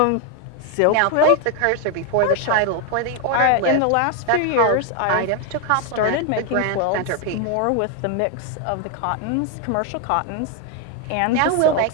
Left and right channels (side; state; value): both; different; correlation 0.01